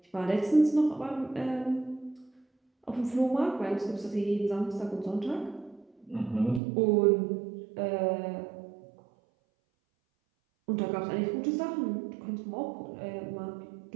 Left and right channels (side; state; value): left; drops out; at 6.6 s